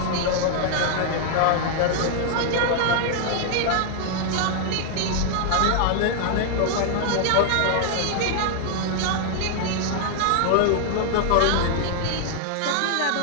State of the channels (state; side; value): different; both; correlation 0.00